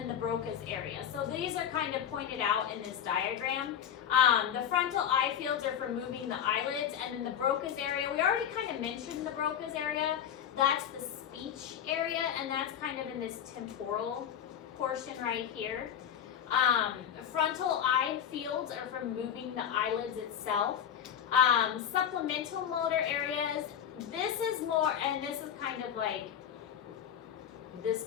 the Broca's area. So these are kind of pointed out in this diagram. The frontal eye fields are for moving the eyelids, and then the Broca's area, we already kind of mentioned the Broca's area. That's the speech area, and that's kind of in this temporal portion right here. Frontal eye fields are for moving the eyelids itself. Supplemental motor areas, this is more, and this is kind of like this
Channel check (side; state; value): right; quieter; 9.1 dB